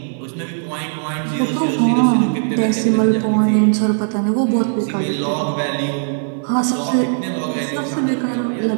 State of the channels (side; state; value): left; silent; digital silence